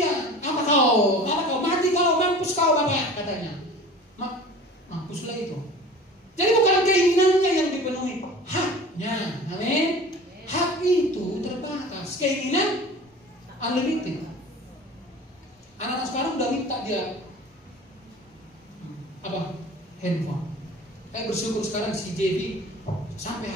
Apa kau mati kau, mampus kau bapak katanya. Mampuslah itu. Jadi bukan keinginannya yang dipenuhi, haknya. Amin. Hak itu terbatas, keinginan unlimited. Anak-anak sekarang udah minta dia apa? Handphone. Saya bersyukur sekarang si JV sampai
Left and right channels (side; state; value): both; normal; correlation 0.40